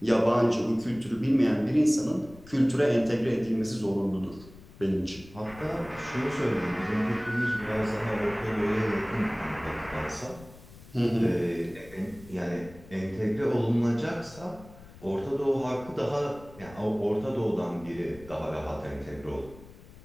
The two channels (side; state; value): left; noise; rumble, 20 dB below the sound